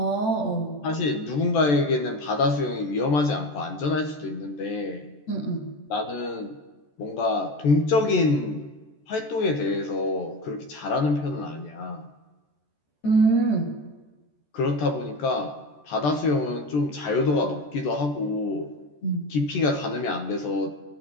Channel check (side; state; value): right; late; 14 ms